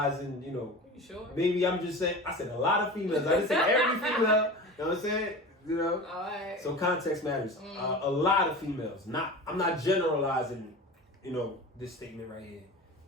You know, You sure? maybe I'm just saying. I said a lot of females. I didn't say every female. You know what I'm saying? You know. All right. So context matters. A lot of females. I'm not generalizing. You know, this statement right here.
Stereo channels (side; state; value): both; normal; correlation 0.33